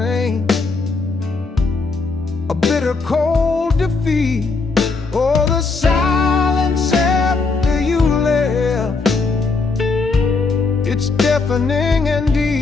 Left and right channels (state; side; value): quieter; right; 4.1 dB